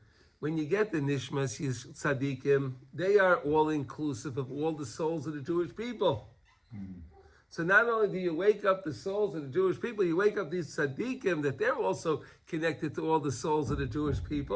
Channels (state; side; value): identical; both; correlation 1.00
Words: When you get the Neshamos Tzaddikim, they are all inclusive of all the souls of the Jewish people. So not only do you wake up the souls of the Jewish people, you wake up these Tzaddikim that they're also connected to all the souls of the Jewish